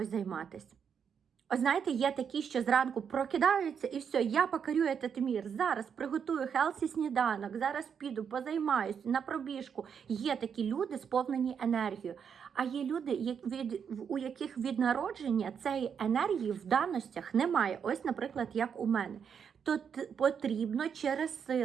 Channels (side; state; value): left; quieter; 7.2 dB